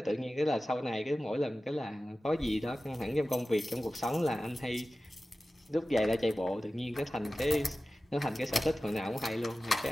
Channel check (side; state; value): both; normal; correlation 0.95